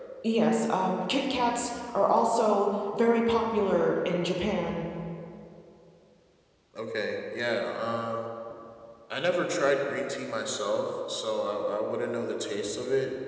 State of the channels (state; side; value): identical; both; correlation 1.00